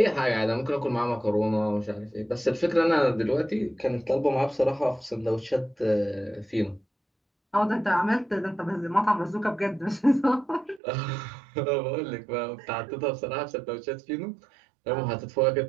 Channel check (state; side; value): drops out; left; at 10.8 s